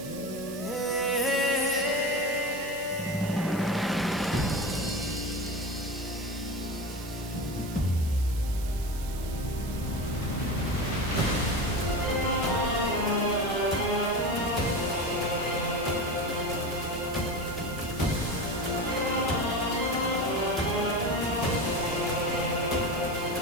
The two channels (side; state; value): right; noise; hiss, 14 dB below the sound